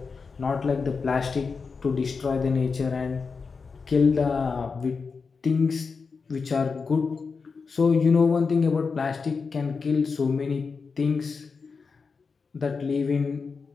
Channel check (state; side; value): quieter; right; 5.0 dB